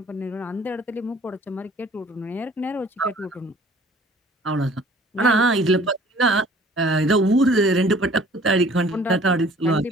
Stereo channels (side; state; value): both; normal; correlation 0.53